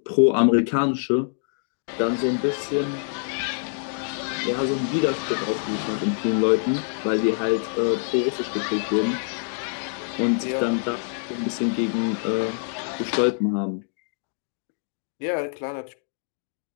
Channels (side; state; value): right; silent; digital silence